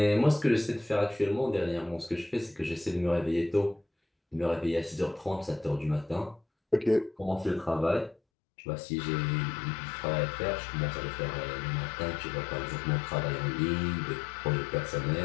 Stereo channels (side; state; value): right; drops out; at 8.2 s